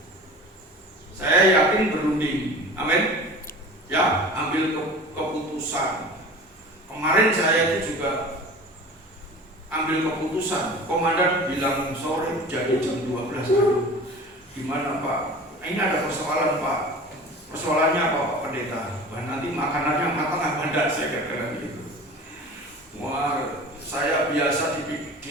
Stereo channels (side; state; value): both; normal; correlation 0.39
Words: Saya yakin berunding. Amin. Ya, ambil keputusan. Kemarin saya itu juga ambil keputusan. Komandan bilang sore jadi jam 12. Gimana Pak? Ini ada persoalan Pak. Persoalannya apa Pak Pendeta? Wah, nanti makanannya matang apa enggak, saya kira gitu. Wah, saya biasa